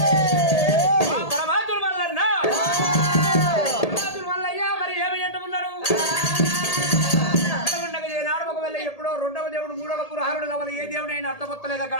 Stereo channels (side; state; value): right; late; 1.8 ms